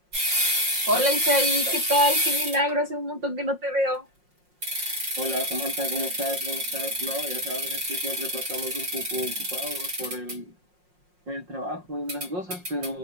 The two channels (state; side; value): late; left; 5.6 ms